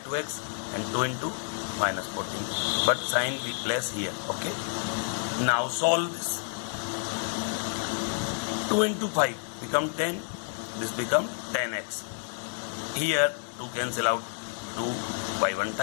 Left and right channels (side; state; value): right; silent; 58 dB below the other